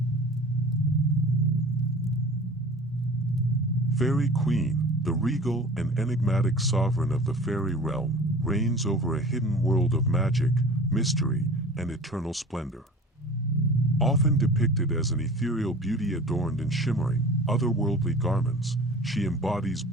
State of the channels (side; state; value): both; normal; correlation 0.41